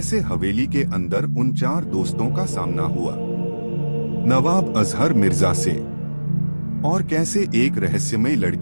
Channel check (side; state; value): both; inverted; correlation -1.00